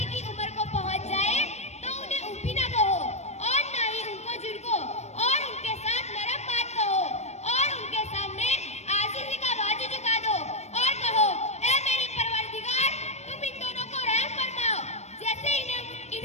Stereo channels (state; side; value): late; right; 0.32 ms